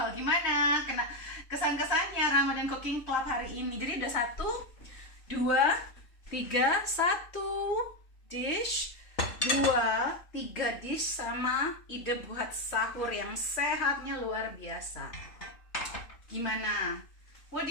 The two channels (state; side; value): late; right; 3.1 ms